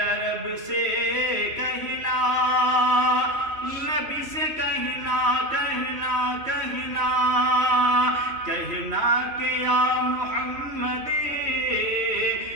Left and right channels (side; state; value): left; late; 3.1 ms